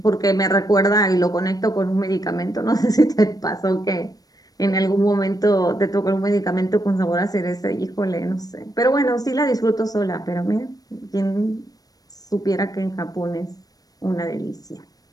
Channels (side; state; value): right; late; 0.18 ms